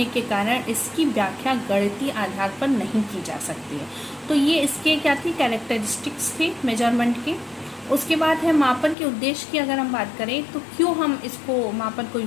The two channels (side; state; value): right; drops out; at 9.0 s